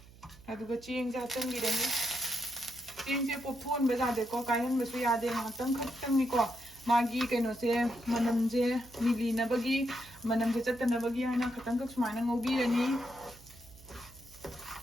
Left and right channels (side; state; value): right; noise; hum, 22 dB below the sound